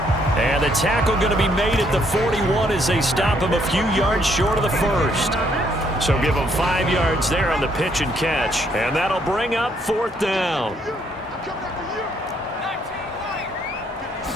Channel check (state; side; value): normal; both; correlation 0.70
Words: And the tackle going to be made at the 41 as they stop him a few yards short of the first. So give him 5 yards there on the pitch and catch. And that'll bring up 4th down.